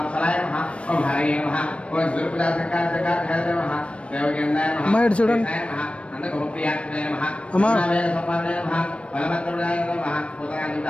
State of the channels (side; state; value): right; late; 0.061 ms